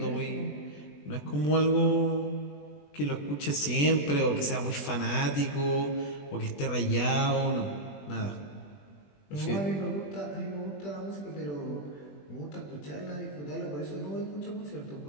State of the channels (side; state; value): right; late; 20 ms